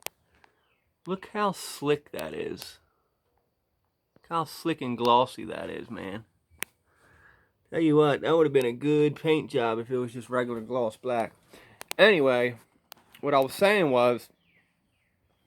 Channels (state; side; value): identical; both; correlation 1.00